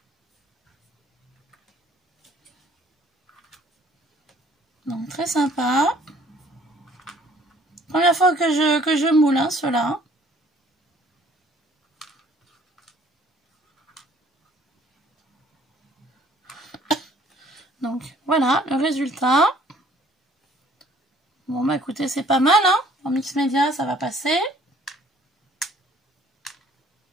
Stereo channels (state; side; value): normal; both; correlation 0.58